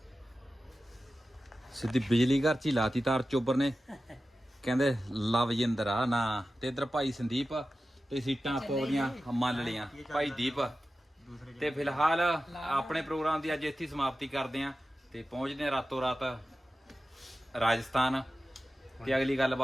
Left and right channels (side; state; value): both; normal; correlation 0.94